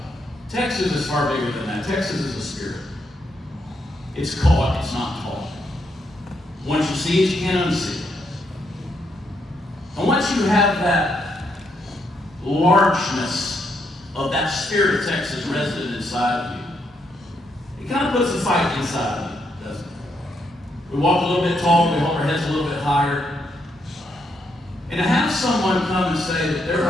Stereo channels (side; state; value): both; normal; correlation 0.77